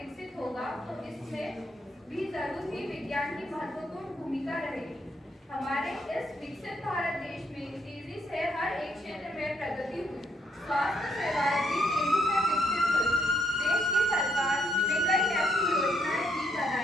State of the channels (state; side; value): normal; both; correlation 0.74